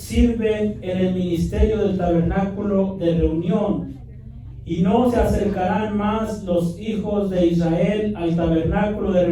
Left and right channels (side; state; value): both; identical; correlation 1.00